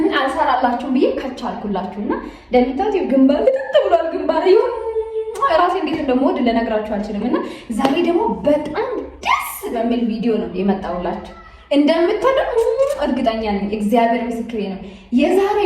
አልሰራላችሁም ብዬ ከቻልኩላችሁና እንደምታዩት ግንባር ልጥጥ ብሏል። ግንባር ይሁን ራሴ እንዴት እንደምወድ ልነግራችሁ አልችልም። እና ዛሬ ደግሞ በጣም ደስ በሚል ቪዲዮ ነው የመጣሁላችሁ። እንደምትወዱ እርግጠኛ ነኝ። እግዚአብሔር ምስክሬ ነው። የዛሬ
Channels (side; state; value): both; identical; correlation 1.00